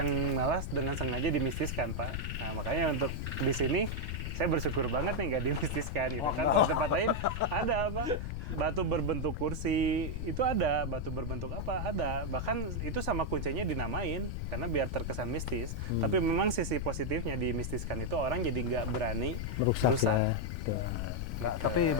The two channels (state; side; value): noise; left; rumble, 3 dB below the sound